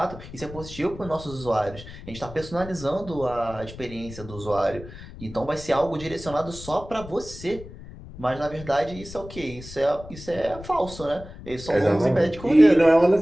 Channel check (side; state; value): left; noise; rumble, 15 dB below the sound